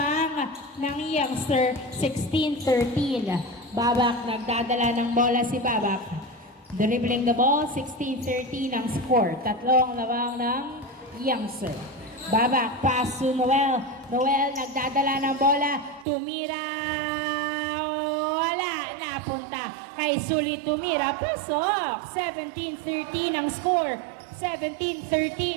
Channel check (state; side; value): drops out; left; at 16.1 s